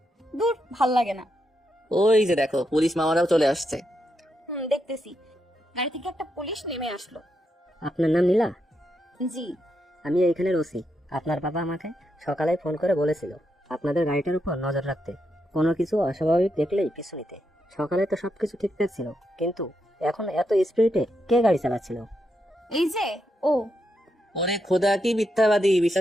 দূর, ভাল লাগে না। ওই যে দেখো, পুলিশ মামারাও চলে আসছে। দেখতেছি। গাড়ি থেকে একটা পুলিশ নেমে আসলো। আপনার নাম নীলা? জি। আমি এইখানের ওসি। আপনার বাবা আমাকে সকালে ফোন করে বলেছিল আপনাদের গাড়িটার উপর নজর রাখতে, কোনো কিছু অস্বাভাবিক দেখলেই পিছু নিতে। সকালে তো সবকিছু ঠিকঠাক ছিল, কিন্তু এখন এত স্পিডে কে গাড়ি চালাচ্ছিল? এই যে ও। ওরে খোদা, কি মিথ্যাবাদী!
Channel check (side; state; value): both; normal; correlation 0.83